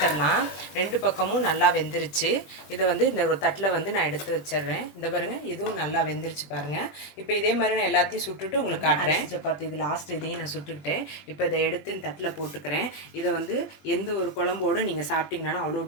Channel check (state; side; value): late; right; 21 ms